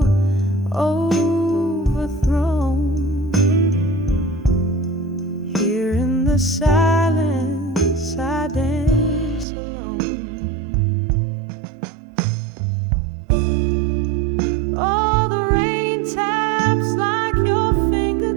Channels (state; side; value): drops out; left; at 9.5 s